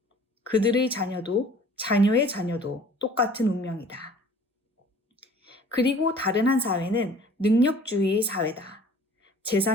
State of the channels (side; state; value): both; normal; correlation 0.50